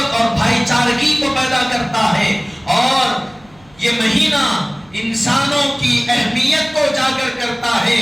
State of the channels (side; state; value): right; noise; hum, 29 dB below the sound